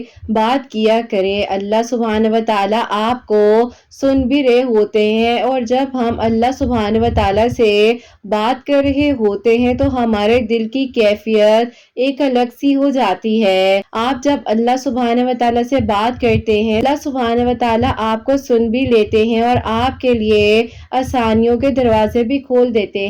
بات کیا کریں۔ اللہ سبحانہ و تعالیٰ آپ کو سن بھی رہے ہوتے ہیں، اور جب ہم اللہ سبحانہ و تعالیٰ سے بات کر رہے ہوتے ہیں تو ہمارے دل کی کیفیت ایک الگ سی ہو جاتی ہے۔ آپ جب اللہ سبحانہ و تعالیٰ سے بات کرتے ہیں، اللہ سبحانہ و تعالیٰ آپ کو سن بھی لیتے ہیں اور آپ کے لیے آسانیوں کے دروازے بھی کھول دیتے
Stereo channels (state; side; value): identical; both; correlation 1.00